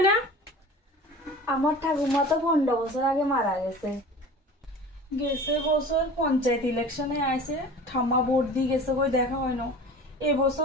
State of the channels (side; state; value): both; normal; correlation 0.39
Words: না? আমার ঠাকুমা তো 15 বছর আগে মারা গেছে। গেছে বছর পঞ্চায়েত ইলেকশনে আইছে, ঠাম্মা ভোট দিয়ে গেছে কই দেখা হয় না।